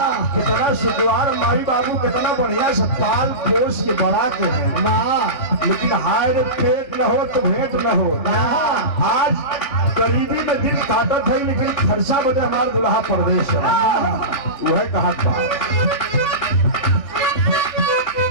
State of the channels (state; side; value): late; right; 3.5 ms